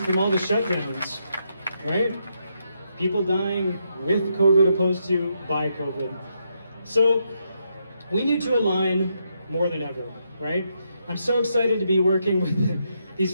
all the shutdowns, right? People dying with COVID opposed to by COVID. So we need to align more than ever, right? I'm so excited to be working with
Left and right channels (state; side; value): inverted; both; correlation -0.80